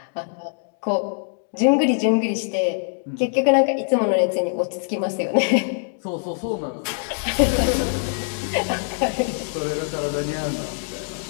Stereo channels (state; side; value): silent; right; digital silence